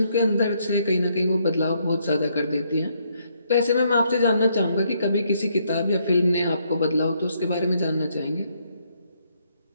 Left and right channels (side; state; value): both; inverted; correlation -0.73